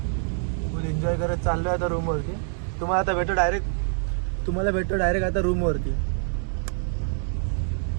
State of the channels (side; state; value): left; silent; 59 dB below the other